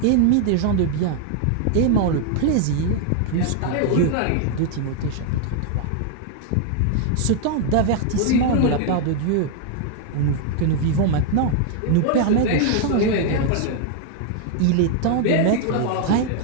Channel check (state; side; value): different; both; correlation 0.00